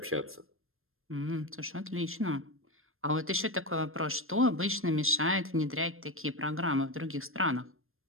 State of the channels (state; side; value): late; left; 0.60 ms